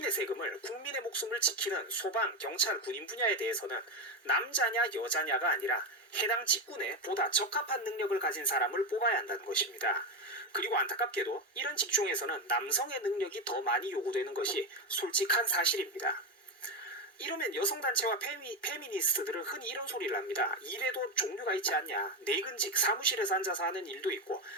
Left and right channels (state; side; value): normal; both; correlation 0.12